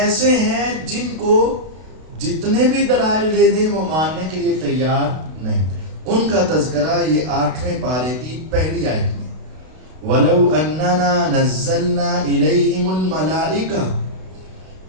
ہیں جن کو جتنے بھی دلائل دے دیں وہ ماننے کے لیے تیار نہیں۔ ان کا تذکرہ یہ 8ویں پارے کی پہلی آیت میں، وَلَوْ أَنَّنَا نَزَّلْنَا إِلَيْهِمُ الْمَلَائِكَةَ،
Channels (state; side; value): late; left; 32 ms